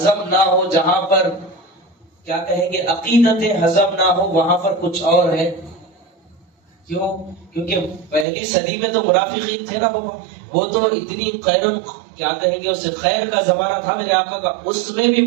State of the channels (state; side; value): drops out; left; at 8.2 s